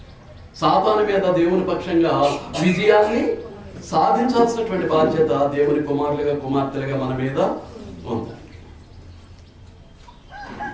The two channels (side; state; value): both; identical; correlation 1.00